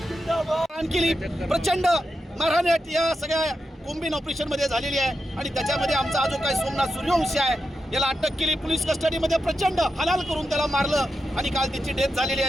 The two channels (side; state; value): both; normal; correlation 0.88